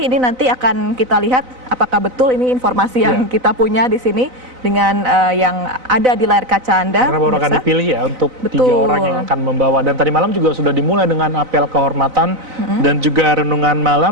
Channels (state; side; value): late; left; 4.0 ms